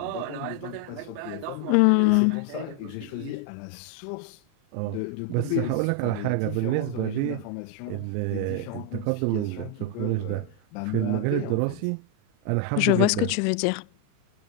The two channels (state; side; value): different; both; correlation 0.01